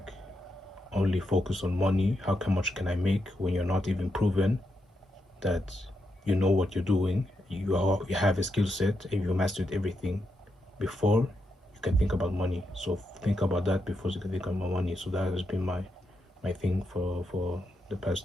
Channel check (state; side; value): normal; both; correlation 0.83